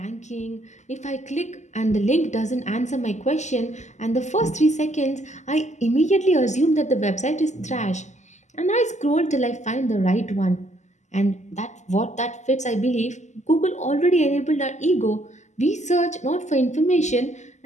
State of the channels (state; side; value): late; right; 0.34 ms